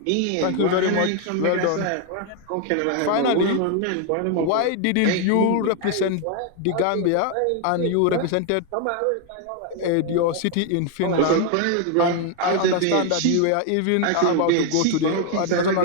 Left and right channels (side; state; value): both; different; correlation 0.00